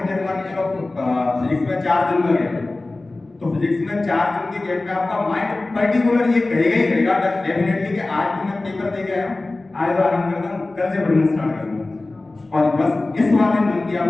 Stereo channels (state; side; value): quieter; right; 3.1 dB